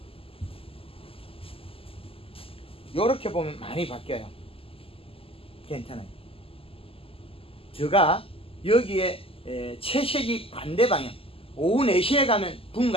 요렇게 보면 많이 바뀌어요. 괜찮아요. 제가 여기에 채색이 반대 방향, 오후 4시에 가면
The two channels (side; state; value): right; late; 0.27 ms